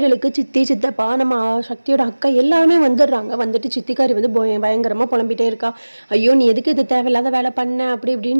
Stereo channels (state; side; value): inverted; both; correlation -1.00